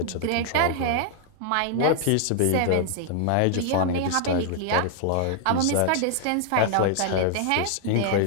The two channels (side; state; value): both; different; correlation 0.00